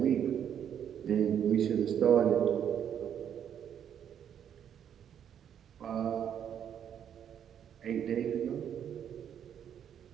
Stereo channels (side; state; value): left; quieter; 9.0 dB